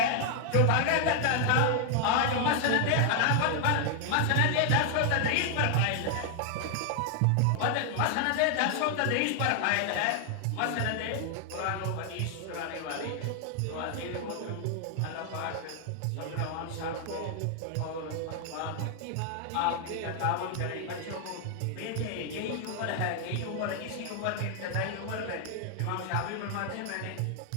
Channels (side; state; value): both; different; correlation 0.00